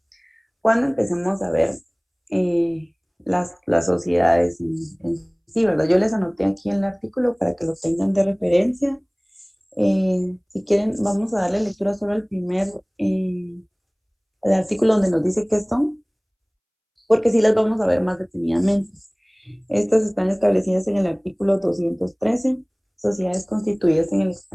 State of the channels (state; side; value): identical; both; correlation 1.00